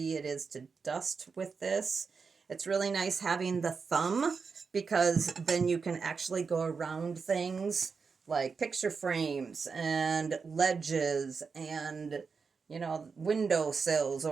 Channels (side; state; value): left; quieter; 5.3 dB